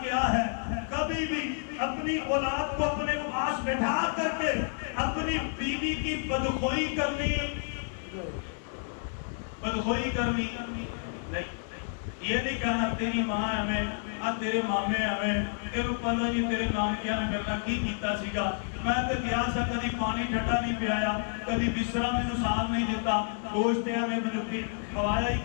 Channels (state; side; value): silent; right; 58 dB below the other